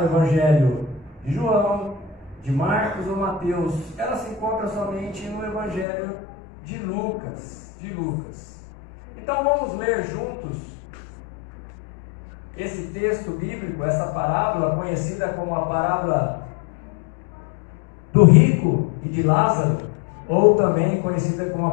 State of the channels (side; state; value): right; drops out; at 5.9 s